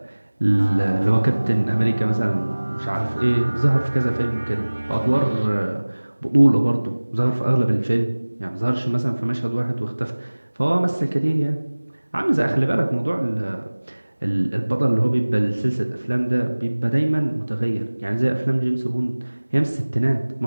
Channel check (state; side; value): inverted; both; correlation -1.00